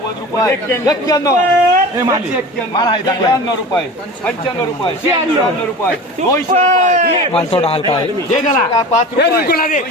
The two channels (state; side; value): normal; both; correlation 0.35